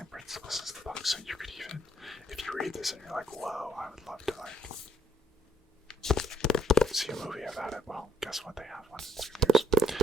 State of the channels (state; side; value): normal; both; correlation 0.70